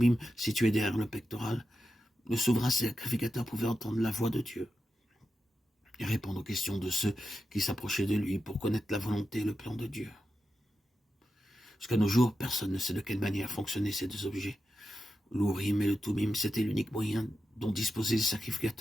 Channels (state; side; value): normal; both; correlation 0.90